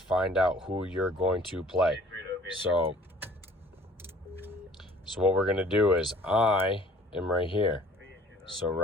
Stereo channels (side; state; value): both; normal; correlation 0.53